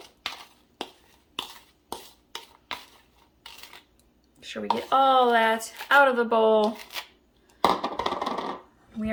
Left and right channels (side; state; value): both; identical; correlation 1.00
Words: Make sure we get all that out of the bowl. We